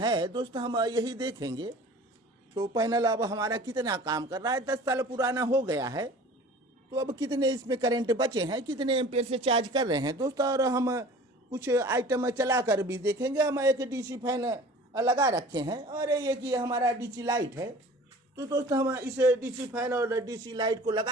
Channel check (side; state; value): both; normal; correlation 0.44